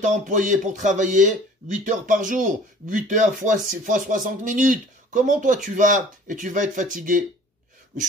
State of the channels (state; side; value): normal; both; correlation 0.49